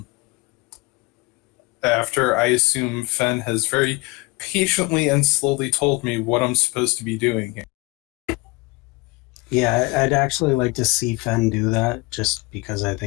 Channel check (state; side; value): quieter; right; 24.6 dB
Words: I assume Fen has very patiently and slowly told me what I'm supposed to be doing here. Yeah, I'd actually like to see Fen do that, just because I